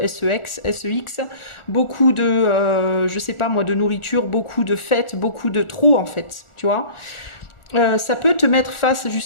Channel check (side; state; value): right; late; 1.4 ms